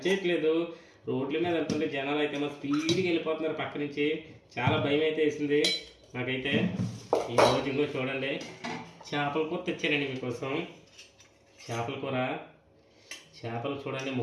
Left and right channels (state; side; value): identical; both; correlation 1.00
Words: రోడ్ల మీద వెళ్తుంటే జనాలు అయితే మా స్పీడ్గా వెళ్ళిపోతున్నారు పక్క నుంచి. చాలా భయం అయితే వేసింది నాకైతే. ఈరోజు ఇంకో చూడండి, చేపల కూర తెచ్చానండి మీకోసం. చేపల కూర, చేపలు చూడండి